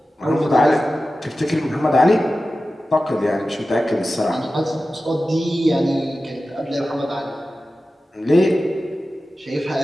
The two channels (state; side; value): normal; both; correlation 0.94